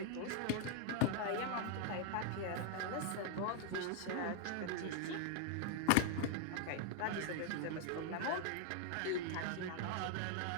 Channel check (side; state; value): both; different; correlation 0.00